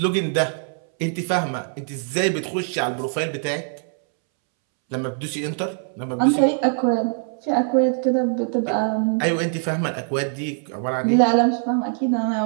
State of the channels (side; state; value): left; silent; 64 dB below the other